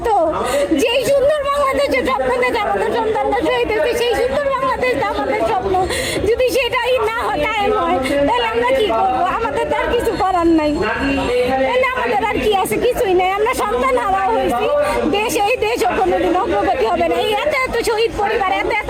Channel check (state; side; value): identical; both; correlation 1.00